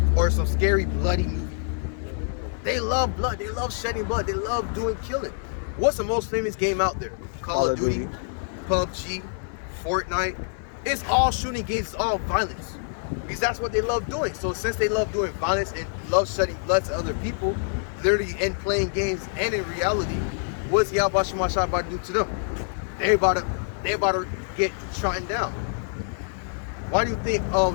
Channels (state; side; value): silent; right; digital silence